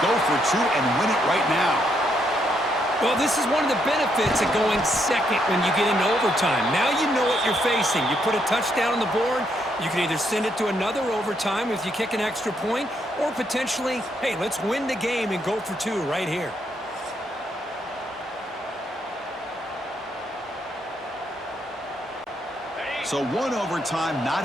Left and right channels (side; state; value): both; normal; correlation 0.76